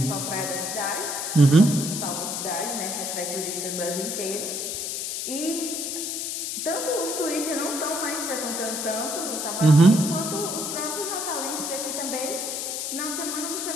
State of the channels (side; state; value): left; noise; hiss, 3 dB below the sound